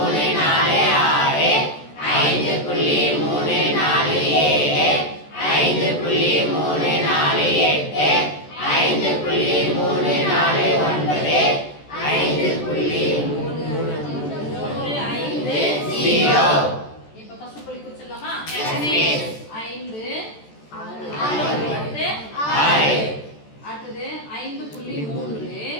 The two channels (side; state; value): right; late; 14 ms